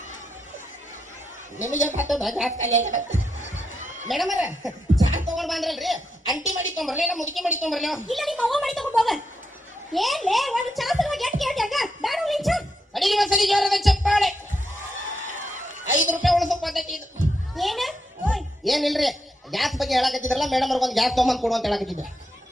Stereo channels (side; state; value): both; normal; correlation 0.83